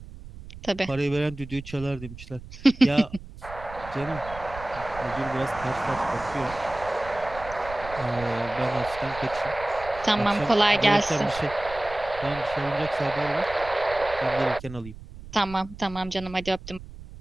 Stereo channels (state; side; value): noise; right; rumble, 15 dB below the sound